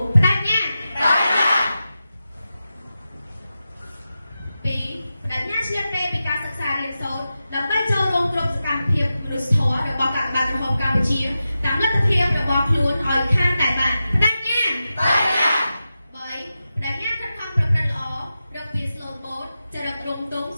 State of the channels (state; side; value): inverted; both; correlation -0.92